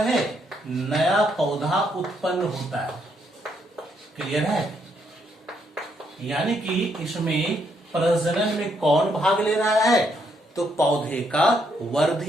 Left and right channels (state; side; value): normal; both; correlation 0.74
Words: नया पौधा उत्पन्न होता है। क्लियर है? यानी कि इसमें प्रजनन में कौन भाग ले रहा है? तो पौधे का